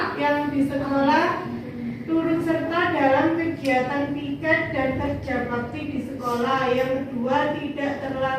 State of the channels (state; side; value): identical; both; correlation 1.00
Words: Yang di sekolah, turut serta dalam kegiatan piket dan kerja bakti di sekolah. Yang kedua, tidak